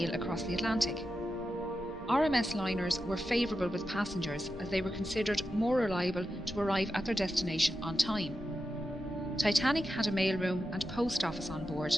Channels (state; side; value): normal; both; correlation 0.90